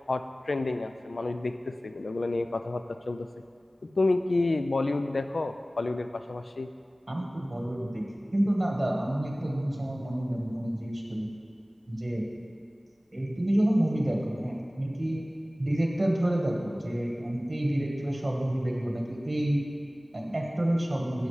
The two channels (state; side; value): normal; both; correlation 0.98